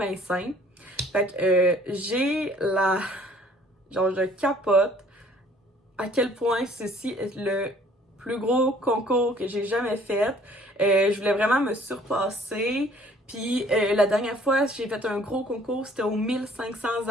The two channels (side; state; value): both; normal; correlation 0.57